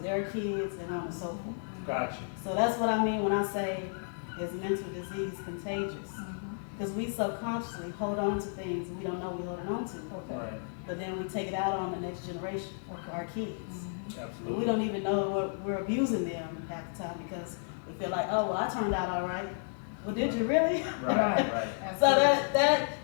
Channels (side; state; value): right; silent; digital silence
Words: kids, and on and so forth. Gotcha. So that's what I mean when I say, is mental disease contagious? Because we subconsciously hold on to things we don't know we're holding on to. Right. But then we take it out on the next generation, our kids. Absolutely. We don't even know we're abusing them half the time because we feel like, oh, well, I turned out all right. Well, did you really? Right. So